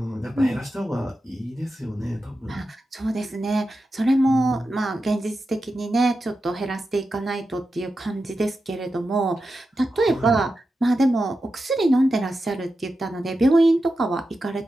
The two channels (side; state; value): both; normal; correlation 0.90